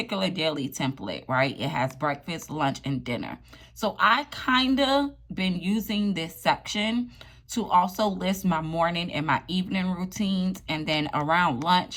daily template, right, it has breakfast, lunch, and dinner. So I kind of been using this section to also list my morning and my evening routines. And then around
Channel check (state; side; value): identical; both; correlation 1.00